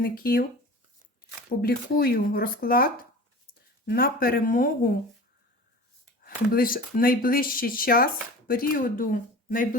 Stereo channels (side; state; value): both; normal; correlation 0.38